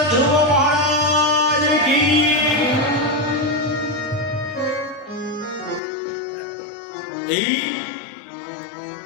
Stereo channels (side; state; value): right; drops out; at 5.8 s